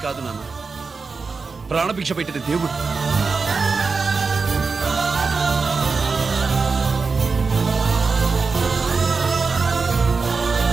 కాదు నాన్న, ప్రాణభిక్ష పెట్టిన దేవుడు.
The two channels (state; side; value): quieter; left; 4.6 dB